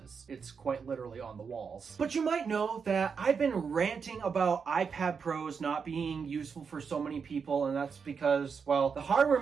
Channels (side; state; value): left; quieter; 5.9 dB